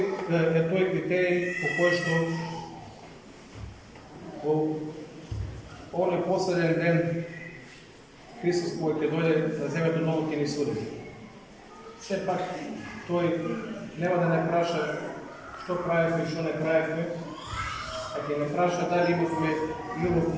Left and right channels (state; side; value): identical; both; correlation 1.00